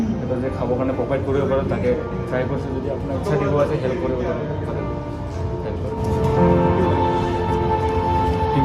যে খাবৰ কাৰণে প্ৰভাইড কৰিব পাৰোঁ তাকে ট্ৰাই কৰিছোঁ। যদি আপোনাৰ ইচ্ছা দিব আছে হেল্প কৰিব পাৰোঁ, হেল্প কৰিব। ठीक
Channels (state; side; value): identical; both; correlation 1.00